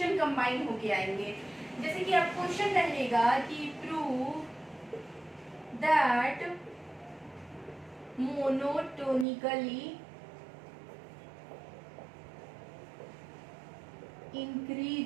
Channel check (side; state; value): left; drops out; at 9.2 s